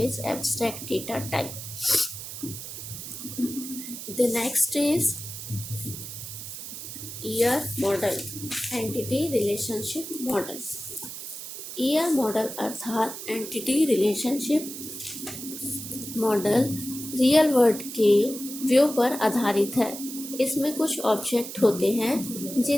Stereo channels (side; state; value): right; noise; hiss, 9 dB below the sound